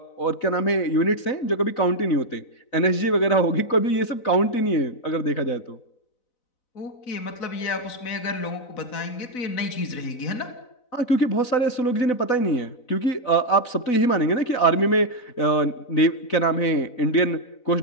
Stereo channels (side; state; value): right; late; 4.0 ms